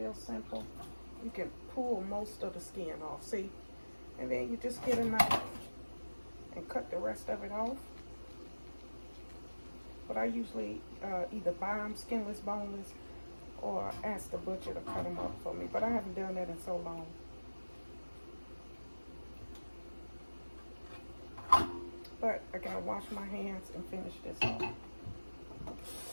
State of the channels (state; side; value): inverted; both; correlation -1.00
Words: simple. You can pull most of the skin off, see? And then you just get a knife and cut the rest of it off. But I usually either buy them skinless, boneless, or ask the butcher to cut them up for me. But I haven't done that in so long. But I gotta wash my hands and finish this off.